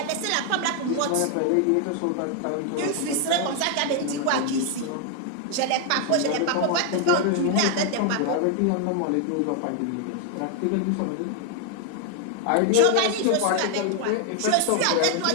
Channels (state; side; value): different; both; correlation 0.00